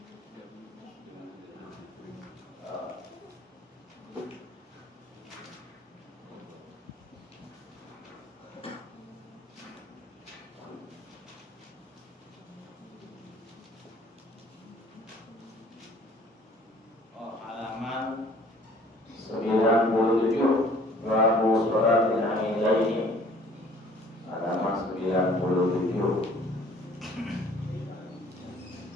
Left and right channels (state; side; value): normal; both; correlation 0.54